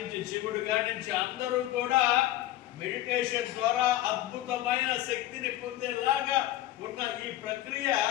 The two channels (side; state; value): right; quieter; 14.5 dB